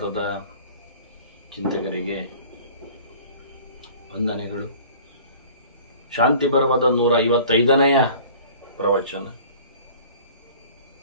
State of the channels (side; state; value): both; inverted; correlation -0.46